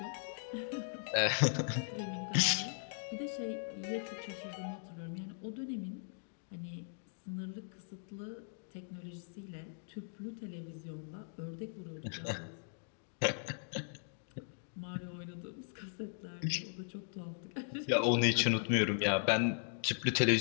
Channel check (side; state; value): right; silent; digital silence